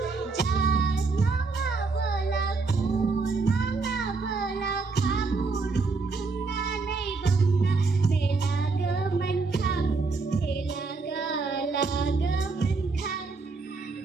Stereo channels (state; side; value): quieter; left; 4.1 dB